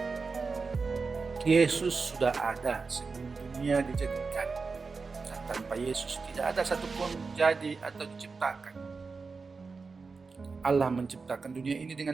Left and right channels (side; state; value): left; quieter; 4.5 dB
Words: Yesus sudah ada sebelum dunia dijadikan. Dan tanpa Yesus tidak ada satupun jadi atau diciptakan. Allah menciptakan dunia ini